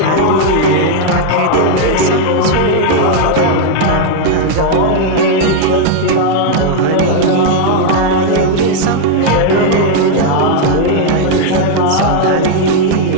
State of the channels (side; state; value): both; different; correlation 0.00